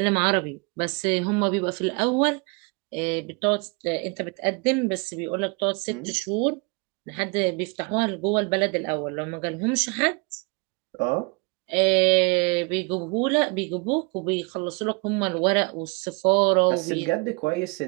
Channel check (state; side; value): quieter; left; 30.6 dB